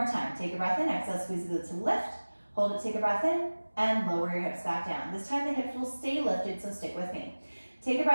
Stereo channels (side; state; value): both; inverted; correlation -1.00